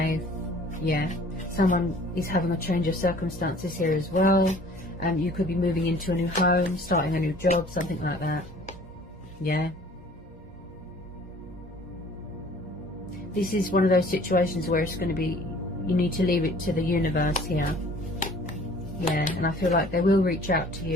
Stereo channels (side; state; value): both; normal; correlation 0.51